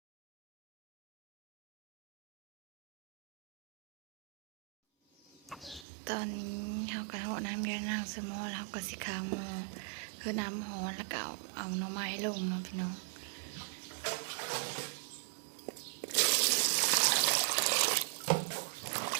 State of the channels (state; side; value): drops out; left; at 5.9 s